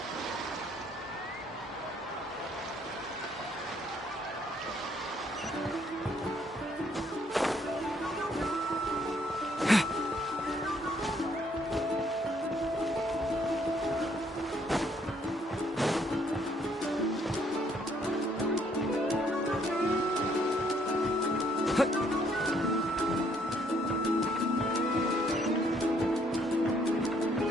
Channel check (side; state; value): both; normal; correlation 0.67